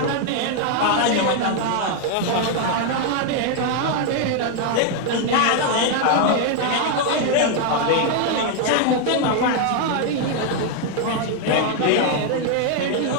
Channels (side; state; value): both; different; correlation 0.00